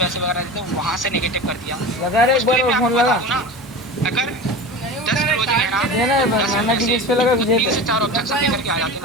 वगैरह देते हैं वहाँ से नेगेटिव कर दिया। लगा रे, एक बार फोन लगा ना, अगर 10 रोज लेना लगा 3 से 4 ऑब्जेक्शन लेकर के आ जाते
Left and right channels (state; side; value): normal; both; correlation 0.31